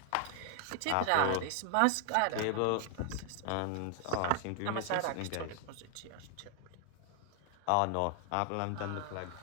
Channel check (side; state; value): both; different; correlation 0.00